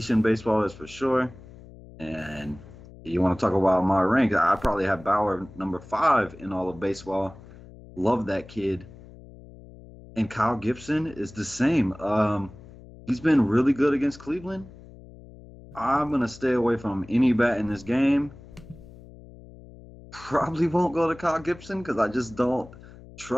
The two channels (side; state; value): left; noise; hum, 19 dB below the sound